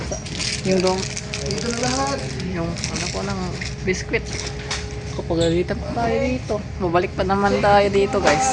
dong. Dito na lahat. Yung ano ko ng biskwit. Kapagalitan pa tayo dito. Mabalik pa naman tayo dito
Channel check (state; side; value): identical; both; correlation 1.00